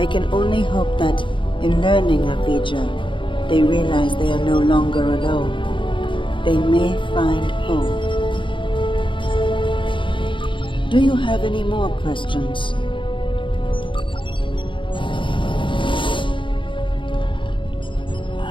can only hope that, in learning of Vija, they realize they are no longer alone. They may find hope. Do you have any more questions?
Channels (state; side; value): late; right; 0.24 ms